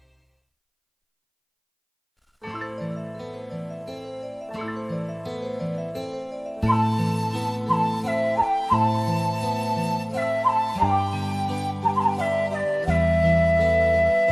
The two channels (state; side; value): identical; both; correlation 1.00